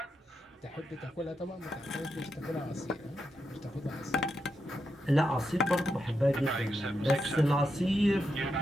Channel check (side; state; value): both; normal; correlation 0.85